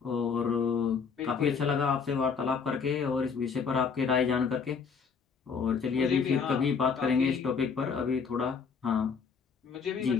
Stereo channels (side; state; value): right; quieter; 5.9 dB